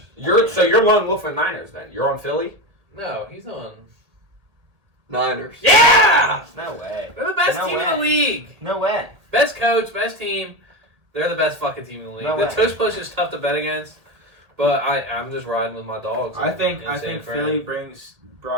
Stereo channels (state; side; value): late; left; 1.8 ms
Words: You're lone wolf with Niners then. You're on Philly. No, he's on. Niners. Yeah! No way. They're the best No team way. in the league. No way. Best coach, best team. They're the best fucking team in the league. No The way. tush push is tough to bet against, but I'm just riding with my dogs. I think in San Fran. Philly brings